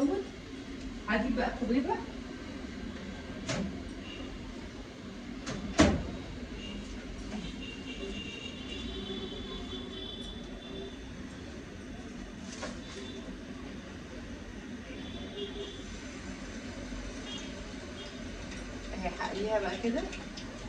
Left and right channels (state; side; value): identical; both; correlation 1.00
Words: هجيب بقى كوبيبه اهي، هقليها بقى كده.